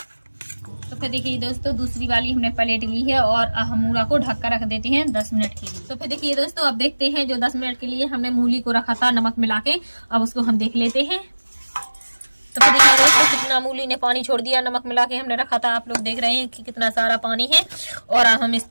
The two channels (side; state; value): both; inverted; correlation -1.00